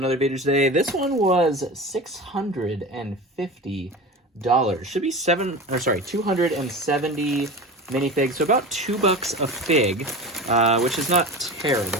video today. This one was $650. Should be 270 minifigs, so about $2 a fig, which is not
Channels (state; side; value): normal; both; correlation 0.30